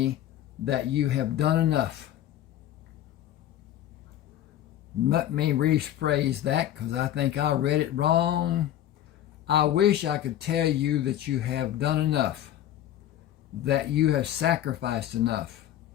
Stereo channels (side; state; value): right; quieter; 11.9 dB